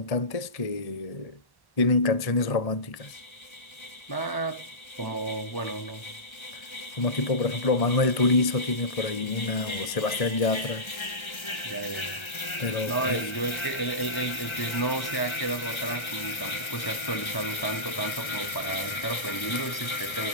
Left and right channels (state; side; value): late; right; 1.3 ms